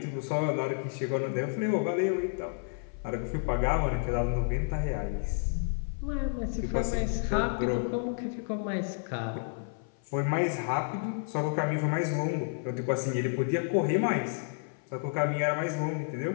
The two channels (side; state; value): right; silent; 55 dB below the other